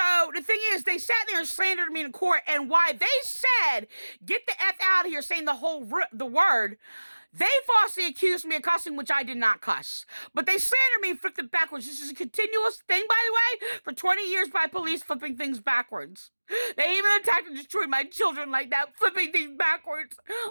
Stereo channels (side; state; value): both; inverted; correlation -1.00